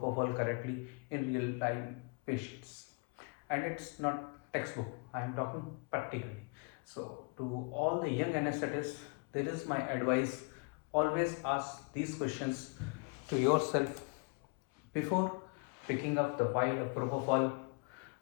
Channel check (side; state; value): right; quieter; 33.8 dB